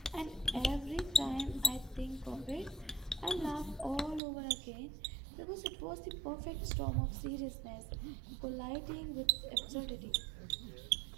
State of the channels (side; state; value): left; drops out; at 4.2 s